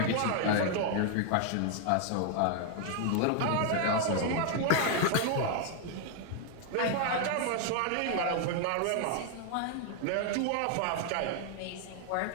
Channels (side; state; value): both; different; correlation 0.00